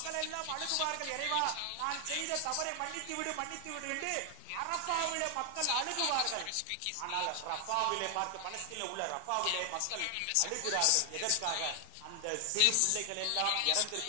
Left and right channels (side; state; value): both; different; correlation 0.00